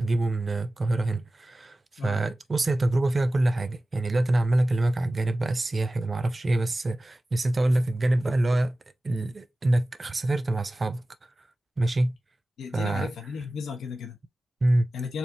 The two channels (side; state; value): both; normal; correlation 0.96